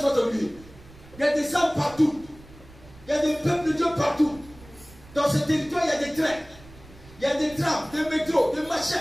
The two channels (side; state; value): right; noise; rumble, 21 dB below the sound